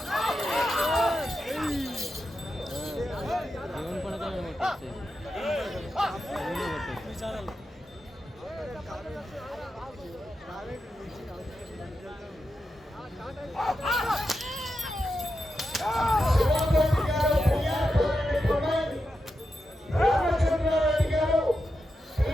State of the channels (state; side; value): normal; both; correlation 0.88